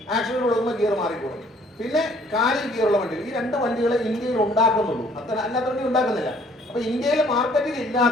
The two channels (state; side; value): normal; both; correlation 0.59